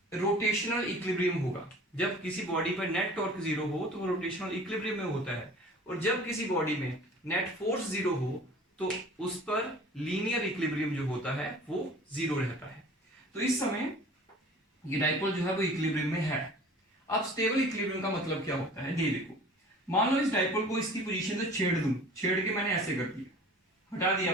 रोटेशनल इक्विलिब्रियम होगा। जब किसी बॉडी पर नेट टॉर्क 0 हो तो वो रोटेशनल इक्विलिब्रियम में होता है, और जब किसी बॉडी में नेट फोर्स 0 हो तो उस पर लीनियर इक्विलिब्रियम जो होता है वो 0 रहता है। तो इस समय ये डाइपोल जो है वो इक्विलिब्रियम में है। अब स्टेबल इक्विलिब्रियम का मतलब क्या होता है, ये देखो मान लो इस डाइपोल को इसकी पोजीशन से छेड़ दूं, छेड़ के मैंने ऐसे कर दिया, हटा दिया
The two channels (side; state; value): both; normal; correlation 0.45